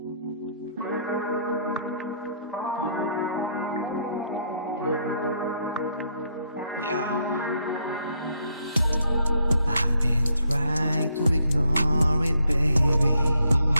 I've been trying to ignore it, baby,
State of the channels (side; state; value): both; inverted; correlation -0.72